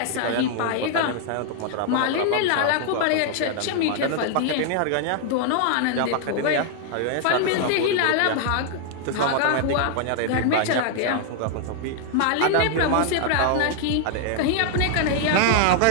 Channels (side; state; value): both; different; correlation 0.00